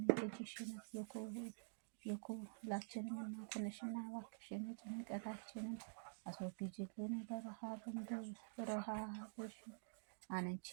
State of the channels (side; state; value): left; silent; digital silence